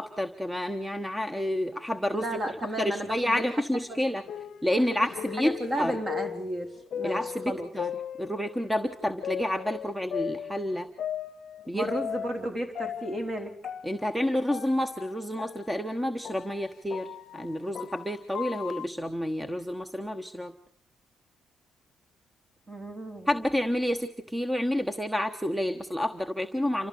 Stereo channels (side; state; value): both; normal; correlation 0.91